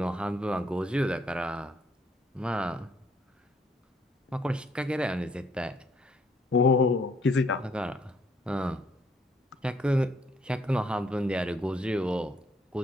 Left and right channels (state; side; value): normal; both; correlation 0.68